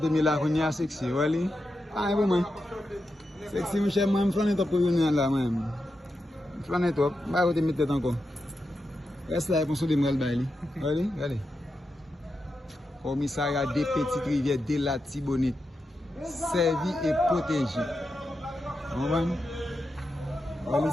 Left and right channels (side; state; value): both; normal; correlation 0.88